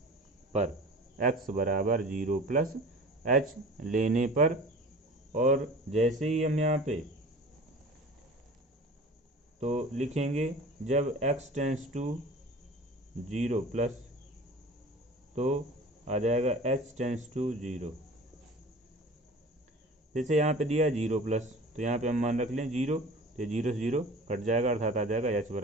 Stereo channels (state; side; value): normal; both; correlation 0.41